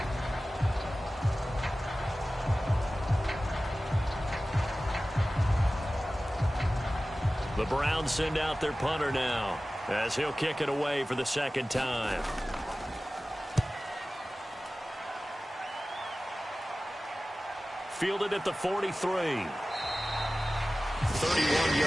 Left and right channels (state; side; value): normal; both; correlation 0.96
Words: The Browns send out their punter now as he'll kick it away for the second time. Fielded at the 43. 31